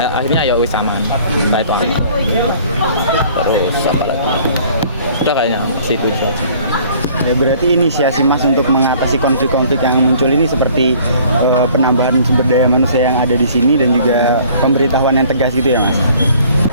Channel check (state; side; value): inverted; both; correlation -0.54